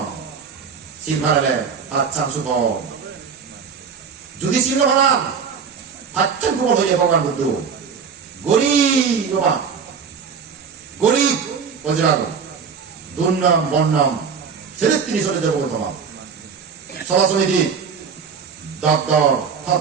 শিল ভালে আচ্ছান সুখ যদি শিল ভালা আচ্ছান প্রবল হয়ে ভগবান বুদ্ধ গরিব বাবা গরিব বজ্রাগ দুর্নাম বর্ণাম ছেলে তিনি চলে যাবো তোমার সভা সমিতি দপ্তর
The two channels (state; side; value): quieter; left; 6.2 dB